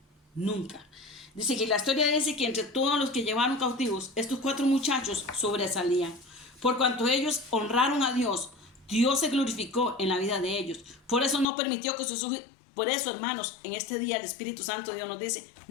nunca. Dice que la historia dice que entre todos los que llevaron cautivos, estos 4 muchachos sobresalían. Por cuanto ellos honraron a Dios, Dios se glorificó en la vida de ellos. Por eso no permitió que sus hijos, por eso, hermanos, en este día el Espíritu Santo de Dios nos dice,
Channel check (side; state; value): right; drops out; at 11.5 s